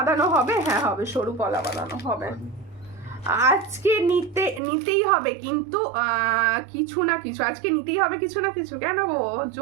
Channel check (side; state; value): left; drops out; at 4.6 s